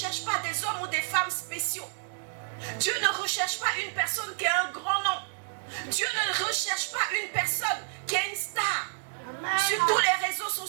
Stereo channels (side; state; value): left; silent; digital silence